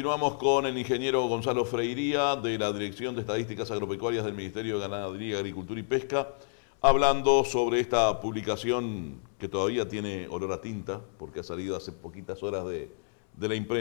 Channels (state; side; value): silent; right; 58 dB below the other